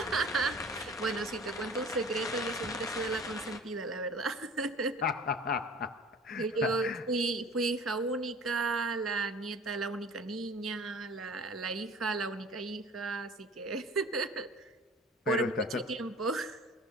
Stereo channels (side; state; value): both; normal; correlation 0.44